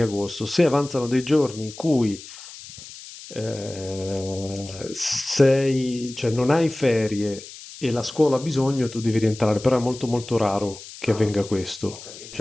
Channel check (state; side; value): noise; left; hiss, 16 dB below the sound